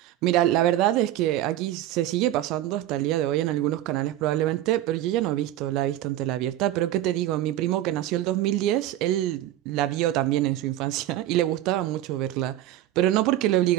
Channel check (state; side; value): quieter; left; 13.5 dB